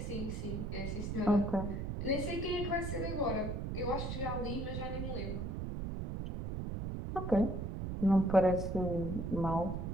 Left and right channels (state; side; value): noise; right; rumble, 4 dB below the sound